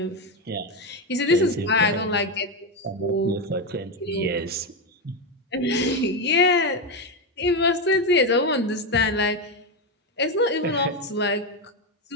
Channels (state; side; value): normal; both; correlation 0.10